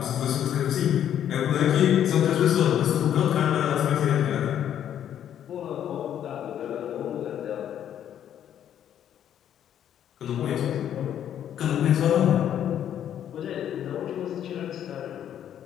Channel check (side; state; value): right; quieter; 10.1 dB